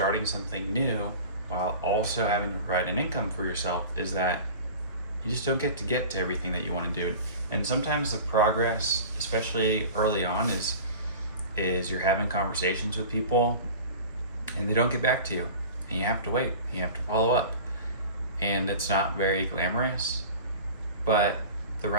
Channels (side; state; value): both; inverted; correlation -0.37